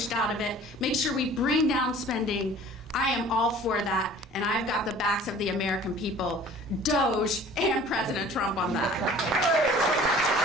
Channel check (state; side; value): normal; both; correlation 0.48